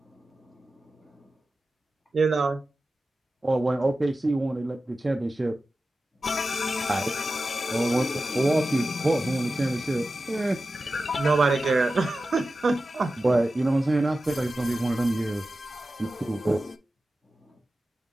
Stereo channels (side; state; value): both; normal; correlation 0.94